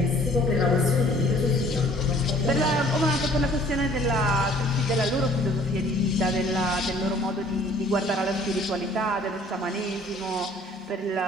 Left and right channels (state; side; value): normal; both; correlation 0.56